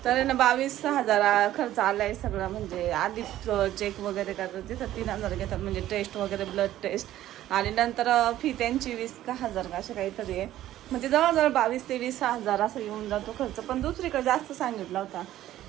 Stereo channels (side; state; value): left; quieter; 13.5 dB